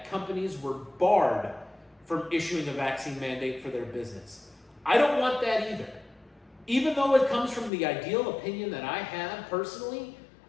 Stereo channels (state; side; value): drops out; right; at 7.7 s